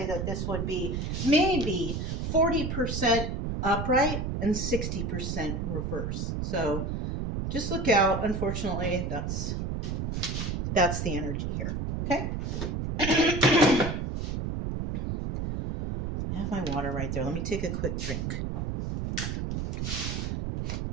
that this would be maybe 40% upright and 60% reverse. So just look out. Unfortunately, that's the energy here. Okay. I have my water right there. Let me take a quick drink.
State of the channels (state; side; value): noise; right; rumble, 2 dB below the sound